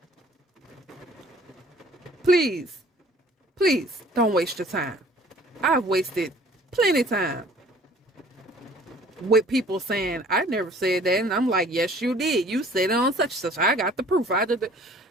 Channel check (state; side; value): normal; both; correlation 0.53